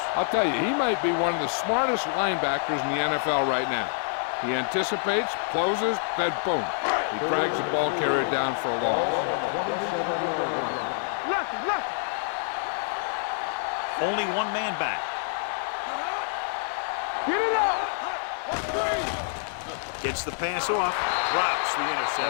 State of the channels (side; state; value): right; silent; digital silence